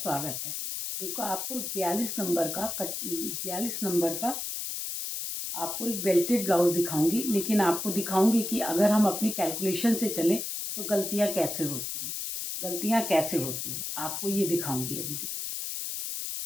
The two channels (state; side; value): noise; left; hiss, 4 dB below the sound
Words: है। देखो, आपको 42 नंबर का आपको एक बेल्टेड ब्लाउज दिखाऊंगी, लेकिन आपको दिखाऊंगी कि अगर हम अपनी कैलकुलेशन से चलें तो गलतियां कैसे होती हैं। आपको ये दिखाऊंगी अभी।